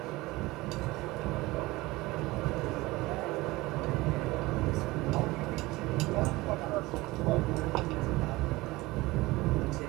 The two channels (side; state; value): left; quieter; 20.5 dB